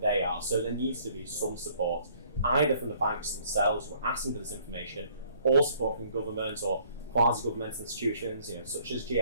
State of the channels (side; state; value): both; inverted; correlation -0.61